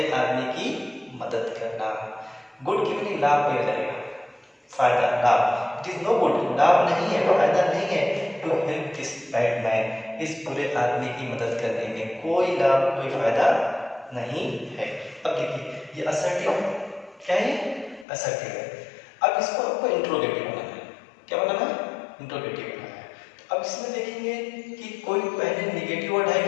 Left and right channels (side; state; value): right; drops out; at 18.1 s